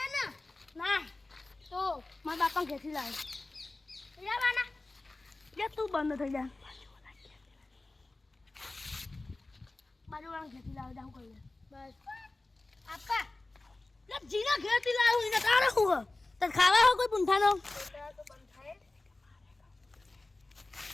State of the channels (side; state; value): right; quieter; 3.1 dB